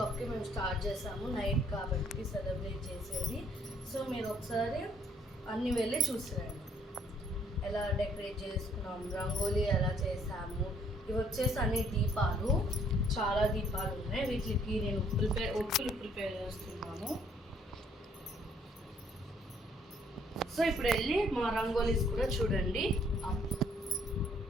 మేము స్టార్ట్ చేసాము, నైట్ కాబట్టి సెలబ్రేట్ చేసేది. సో మీరు ఒకసారి అన్ని వెళ్ళి చూసిరండి ఎలా డెకరేట్ చేసుకున్నాం, రంగోలీ ఎలా చేసాము. ఇవి వచ్చేసి అన్ని దీపాలు, చాలా దీపాలు ఉన్నాయి. వీటికి నేను ఒత్తులు ప్రిపేర్ చేస్తున్నాను. సో ఇప్పుడు వెళ్ళి మా రంగోలీస్ కూడా చూడండి.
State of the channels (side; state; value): both; normal; correlation 0.64